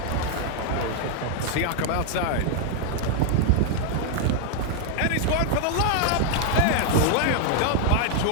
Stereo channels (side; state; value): both; different; correlation 0.00